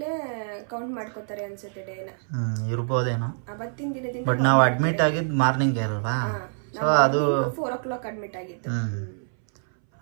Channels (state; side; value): silent; left; 61 dB below the other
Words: ಕೌಂಟ್ ಮಾಡ್ಕೋತಾರೆ ಅನ್ಸುತ್ತೆ ಡೇನ. ಇರ್ಬೋದೇನೋ ಅವತ್ತಿನ ದಿನದಿಂದ. ಬಟ್ ನಾವು ಅಡ್ಮಿಟ್ ಆಗಿದ್ದು ಮಾರ್ನಿಂಗ್ ಅಲ್ವಾ, ಸೊ ಅದು 4 o'clock ಅಡ್ಮಿಟ್ ಆಗಿತ್ತು.